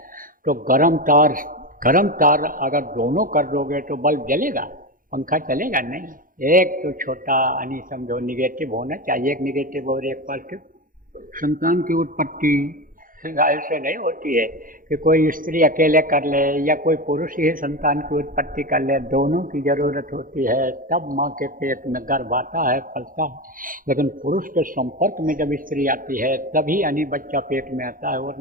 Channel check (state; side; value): late; left; 0.40 ms